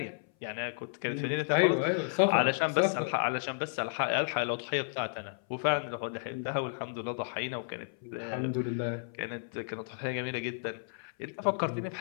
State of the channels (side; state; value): right; silent; 56 dB below the other